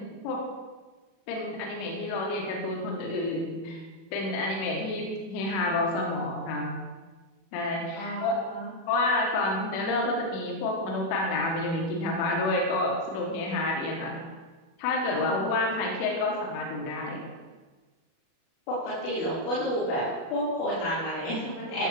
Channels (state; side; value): late; right; 36 ms